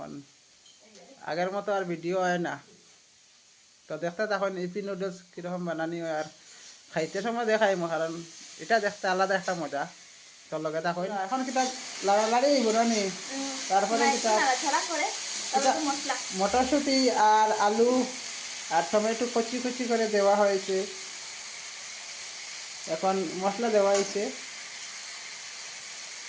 আগের মতো আর ভিডিও হয় না তো দেখতে তখন ইপি নুডলস কিরকম বানানি হয় আর খাইতে সময় দেখাইমু কারণ এটা দেখতে আলাদা একটা মজা তোর লগে থাকইন এখন কিতা লাড়ালাড়ি বনানি তারপরে কিতা মটরশুঁটি আর আলু আর টমেটো কচি কচি করে দেওয়া হয়েছে এখন মশলা দেওয়া হয়েছে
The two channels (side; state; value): both; identical; correlation 1.00